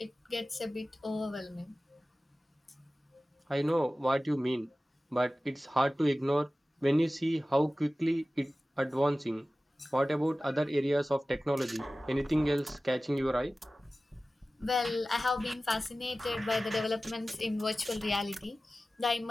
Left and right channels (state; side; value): normal; both; correlation 0.96